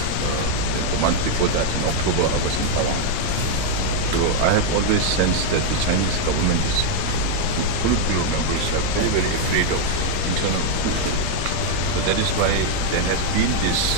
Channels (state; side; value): different; both; correlation 0.00